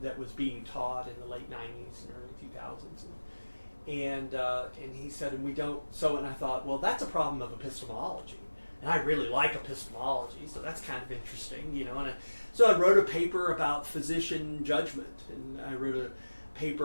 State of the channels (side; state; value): both; inverted; correlation -1.00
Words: was being taught in the late 90s and early 2000s. And he said, and we don't, and I thought, well, that's a problem of epistemology. And I really like epistemology, so that's kind of interesting, And so I wrote a paper about physician judgment, and I wrote a